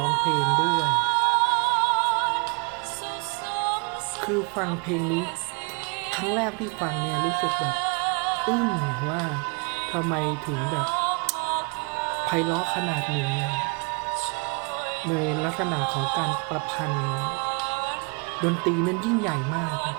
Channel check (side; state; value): left; quieter; 34.2 dB